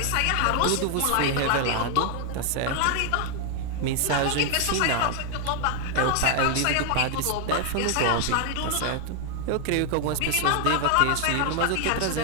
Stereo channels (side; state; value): both; different; correlation 0.00